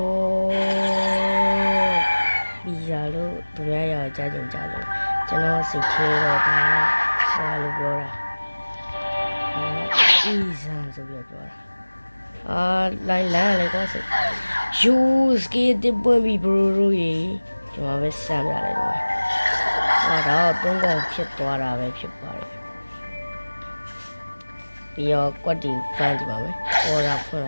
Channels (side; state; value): both; inverted; correlation -1.00